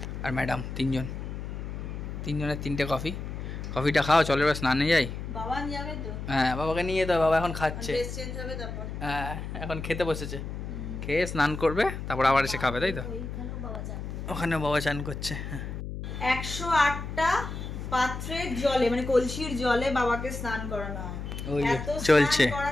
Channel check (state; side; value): noise; left; hum, 7 dB below the sound